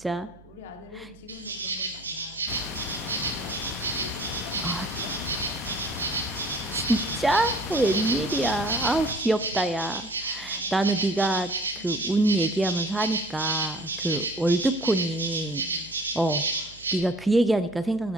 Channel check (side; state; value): right; noise; hum, 24 dB below the sound